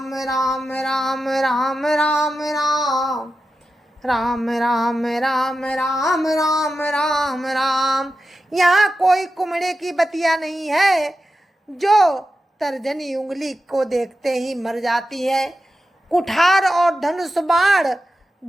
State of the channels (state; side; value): normal; both; correlation 0.91